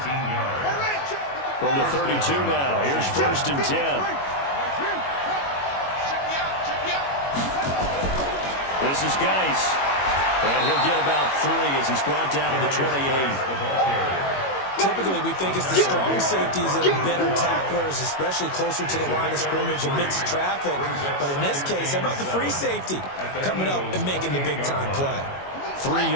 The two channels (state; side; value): late; right; 21 ms